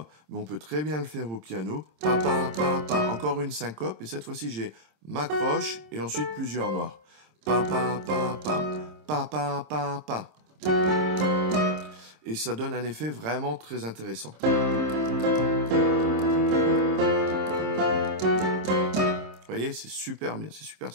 mais on peut très bien le faire au piano. Pa, pa, pa, pa. Encore une syncope, et cette fois-ci, j'ai ma croche et ensuite plusieurs noirs. Pa, pa, pa, pa. Pa, pa, pa, pa. Et ça donne un effet vraiment très intéressant. Vous voyez, c'est super bien, c'est super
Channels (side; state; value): left; late; 26 ms